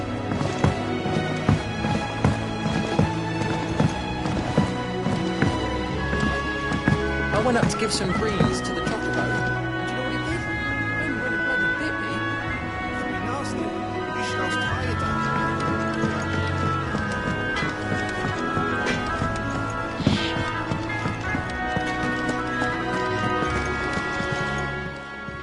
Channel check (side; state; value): both; identical; correlation 1.00